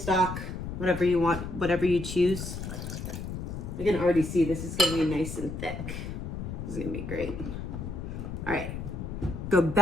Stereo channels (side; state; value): left; noise; rumble, 6 dB below the sound